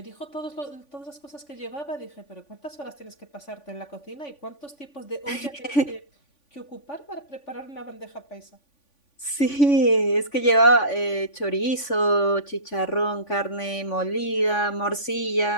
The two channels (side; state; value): right; late; 3.5 ms